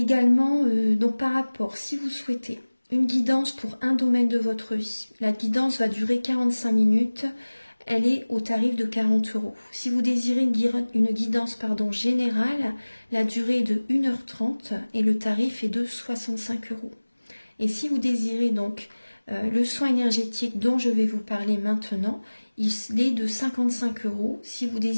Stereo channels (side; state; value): both; inverted; correlation -1.00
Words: donc par rapport, si vous souhaitez une guidance pour un domaine de votre vie, la guidance va durer 45 minutes. Elle est au tarif de 40 €. Si vous désirez une guidance générale, la durée est de 1h30 et le tarif est de 65 €. Et si vous désirez donc le soin énergétique dont je vais vous parler maintenant, il est de 55 €. Si vous